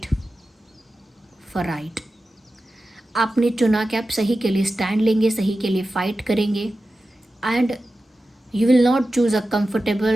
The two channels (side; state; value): both; normal; correlation 0.93